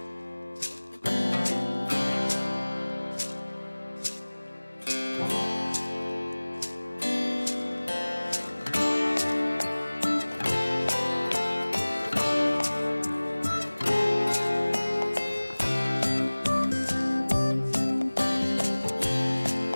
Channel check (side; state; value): both; inverted; correlation -1.00